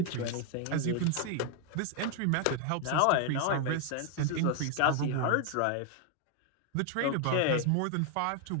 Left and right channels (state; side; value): different; both; correlation 0.00